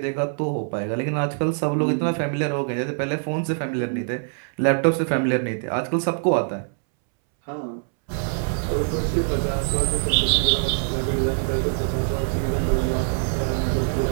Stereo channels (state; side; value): silent; left; 63 dB below the other